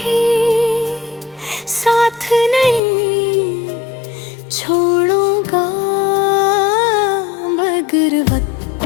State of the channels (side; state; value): right; drops out; at 2.8 s